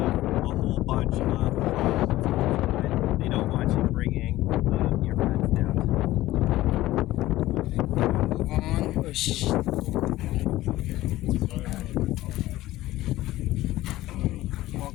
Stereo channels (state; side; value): quieter; right; 16.3 dB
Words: a whole bunch of problems. They don't want you bringing your pets down to them. Move on. Oh,